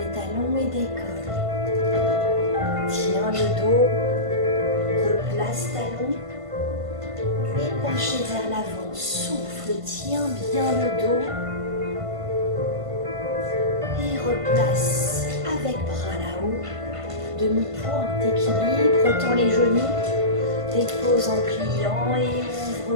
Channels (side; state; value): left; late; 1.5 ms